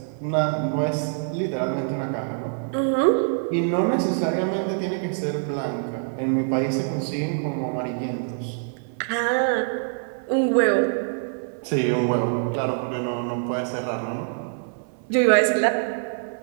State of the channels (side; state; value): left; silent; 62 dB below the other